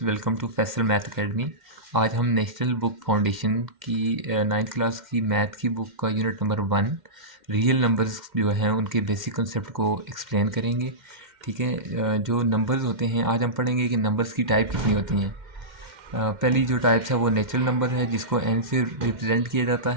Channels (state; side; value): late; left; 2.1 ms